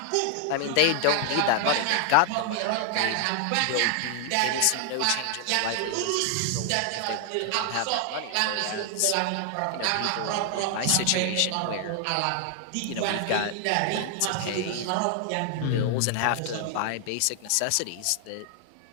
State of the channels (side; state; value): both; different; correlation 0.00